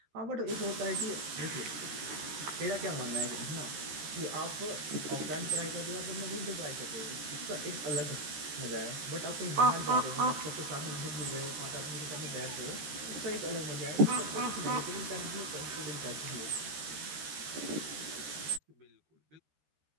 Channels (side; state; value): left; late; 13 ms